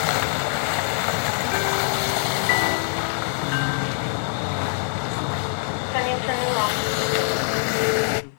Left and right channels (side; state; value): right; silent; 58 dB below the other